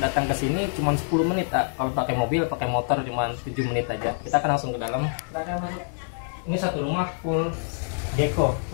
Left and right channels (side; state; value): right; silent; digital silence